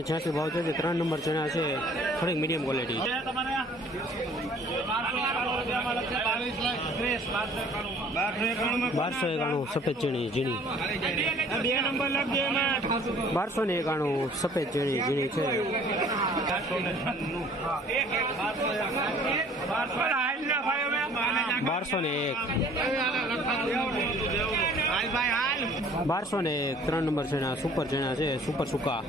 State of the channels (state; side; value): normal; both; correlation 0.54